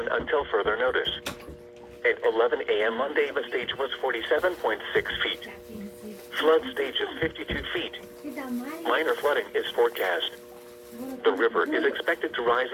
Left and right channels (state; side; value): identical; both; correlation 1.00